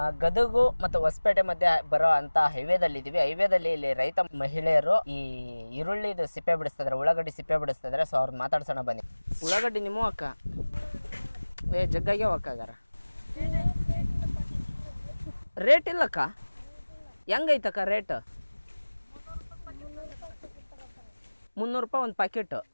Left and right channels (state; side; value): inverted; both; correlation -1.00